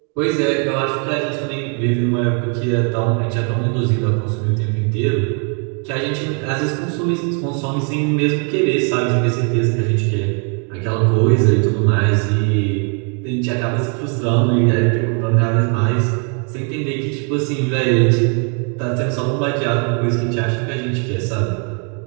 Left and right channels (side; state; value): left; quieter; 39.7 dB